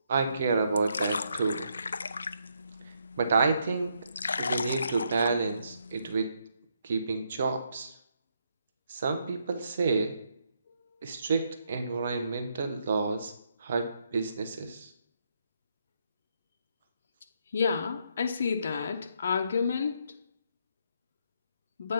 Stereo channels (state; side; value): inverted; both; correlation -0.76